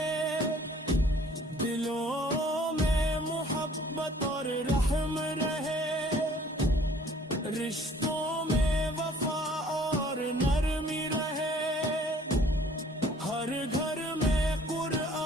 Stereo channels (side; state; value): both; normal; correlation 0.56